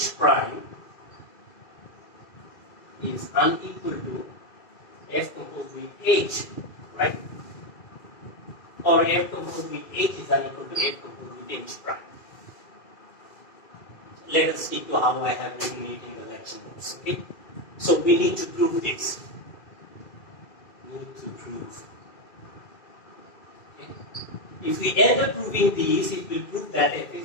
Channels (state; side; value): late; right; 2.5 ms